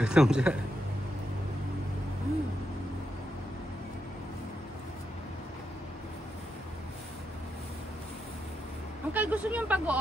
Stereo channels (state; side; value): normal; both; correlation 0.83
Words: siya. Uncle, gusto niyo yung